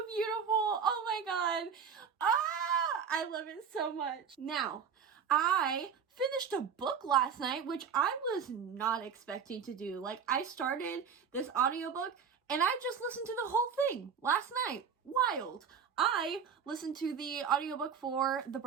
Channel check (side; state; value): left; quieter; 6.8 dB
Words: beautiful. Oh my god. I love it so much. Now, I finished a book last night, which I was not expecting to do. Like, I started this audiobook and I just listened to the whole thing last night. Wild. I listened to the audiobook for The